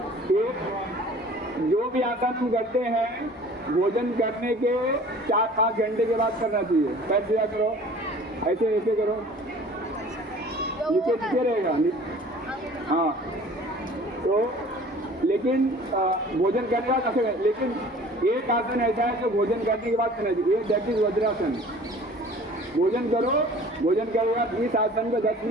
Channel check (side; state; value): both; normal; correlation 0.47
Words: एक जो भी आसन हम करते हैं भोजन करने के 4-5 घंटे के बाद करना चाहिए। पैर सीधा करो, ऐसे ऐसे करो, नीचे रहेगा। हाँ, तो लेकिन भोजन करने का कैसे, लेकिन एक आसन ऐसा है जो भोजन करने के बाद करना चाहिए, दैट इज वज्रासन। भोजन करो, भोजन करने के बाद इस आसन को 10